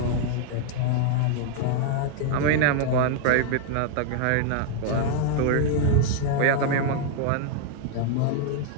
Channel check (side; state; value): both; different; correlation 0.00